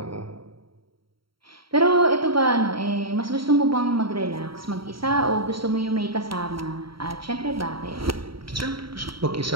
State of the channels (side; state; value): left; late; 0.74 ms